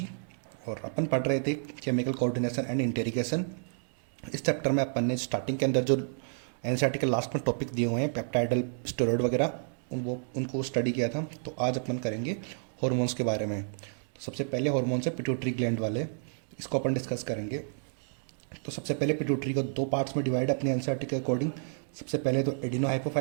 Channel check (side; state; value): left; silent; digital silence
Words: और अपन पढ़ रहे थे केमिकल कोऑर्डिनेशन एंड इंटीग्रेशन। इस चैप्टर में अपन ने स्टार्टिंग के अंदर जो एनसीईआरटी के लास्ट में टॉपिक दिए हुए हैं पेप्टाइडल स्टेरॉइड वगैरह उनको स्टडी किया था। तो आज अपन करेंगे हॉर्मोन्स के बारे में। तो सबसे पहले हॉर्मोन्स है पिट्यूटरी ग्लैंड वाले, इसको अपन डिस्कस करेंगे। तो सबसे पहले पिट्यूटरी को दो पार्ट्स में डिवाइड है अपने एनसीईआरटी के अकॉर्डिंग। सबसे पहले तो एडिनो